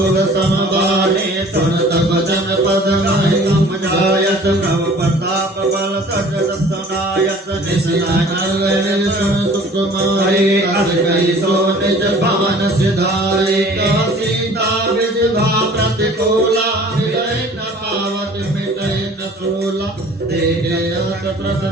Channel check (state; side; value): normal; both; correlation 0.49